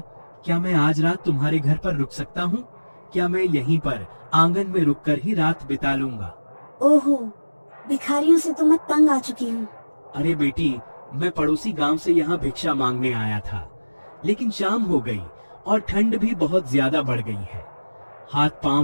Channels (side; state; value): both; inverted; correlation -1.00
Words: क्या मैं आज रात तुम्हारे घर पर रुक सकता हूँ? क्या मैं यहीं पर आंगन में रुककर ही रात बिता लूंगा? ओहो, भिखारियों से तो मैं तंग आ चुकी हूँ। अरे बेटी, मैं पड़ोसी गांव से यहाँ भिक्षा मांगने आया था, लेकिन शाम हो गई और ठंड भी बहुत ज्यादा बढ़ गई है। हाथ